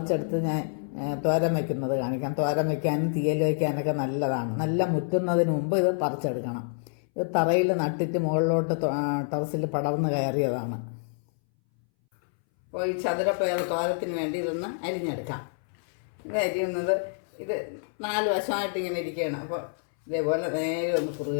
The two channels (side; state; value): right; silent; 60 dB below the other